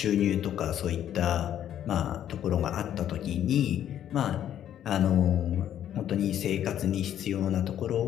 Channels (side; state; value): right; quieter; 10.7 dB